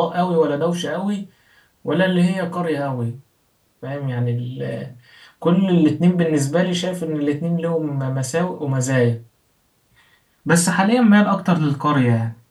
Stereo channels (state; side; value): identical; both; correlation 1.00